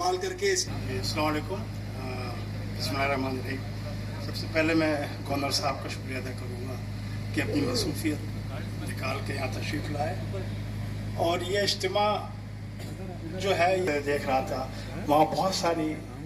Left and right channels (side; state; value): both; identical; correlation 1.00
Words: करके। अस्सलाम वालेकुम। बिस्मिल्लाहिर्रहमानिर्रहीम। सबसे पहले मैं गवर्नर साहब का शुक्रिया अदा करूँगा कि अपनी मसरूफियत निकाल के यहाँ तशरीफ़ लाए। और ये इज्तिमा जो है, ये देख रहा था वहाँ बहुत सारी